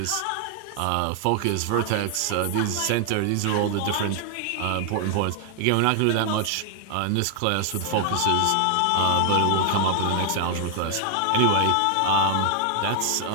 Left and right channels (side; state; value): both; different; correlation 0.00